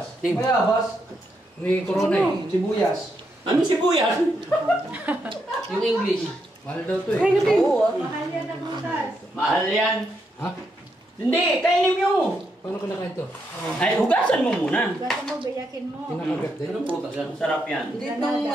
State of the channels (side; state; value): both; normal; correlation 0.80